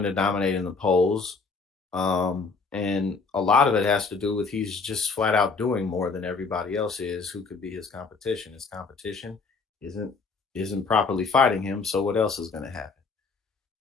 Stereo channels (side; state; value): right; quieter; 4.5 dB